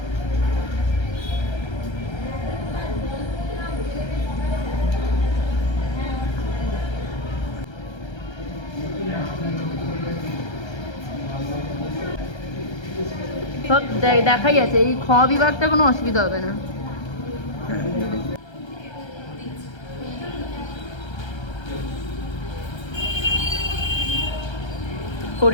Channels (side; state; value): right; late; 1.3 ms